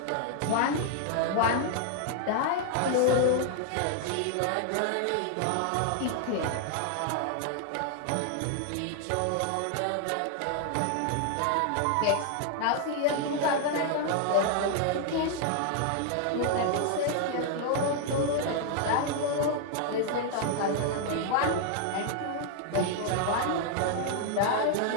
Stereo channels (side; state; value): both; different; correlation 0.00